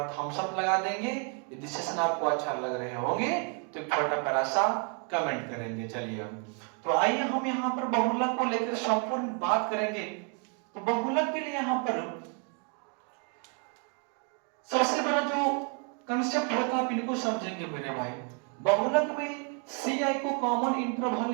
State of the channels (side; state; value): left; quieter; 39.7 dB